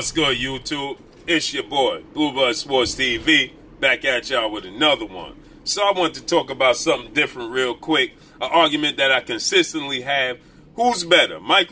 good, YouTube? It's your boy, Bluebird Sports TV, back at y'all with another one. So I want to talk about something different real quick, an argument that I consistently have. Who's better,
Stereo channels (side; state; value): both; identical; correlation 1.00